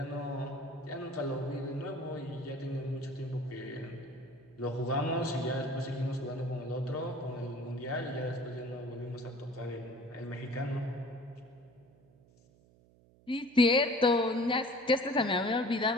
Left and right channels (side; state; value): right; noise; hum, 28 dB below the sound